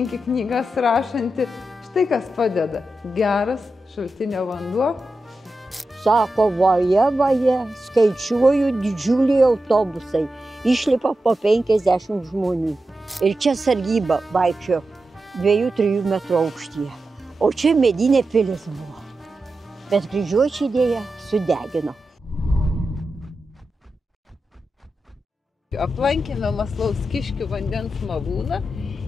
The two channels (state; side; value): normal; both; correlation 0.91